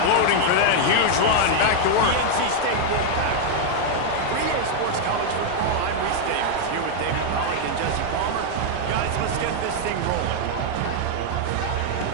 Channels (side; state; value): both; different; correlation 0.00